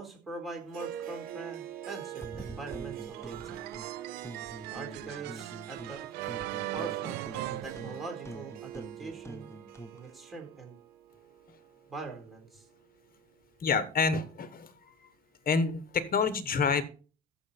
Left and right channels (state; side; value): normal; both; correlation 0.29